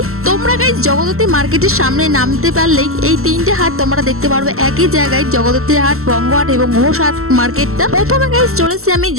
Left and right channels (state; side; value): late; left; 0.63 ms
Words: তোমরা গাইস জগদ্ধাত্রী মার্কেটের সামনে নামতে পারলেই এই 3টে হাট তোমরা দেখতে পারবে একই জায়গায়, জগদ্ধাত্রী হাট, বঙ্গ হাট এবং ঘোষ হাট মার্কেটটা। প্রথমে গাইস চলেছি আমি